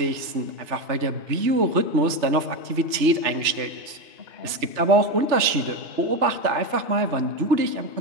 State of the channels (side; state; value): left; late; 3.3 ms